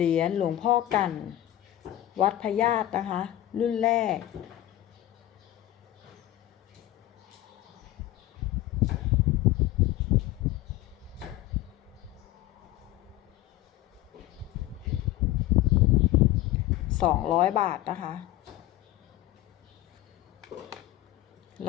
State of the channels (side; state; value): right; quieter; 14.8 dB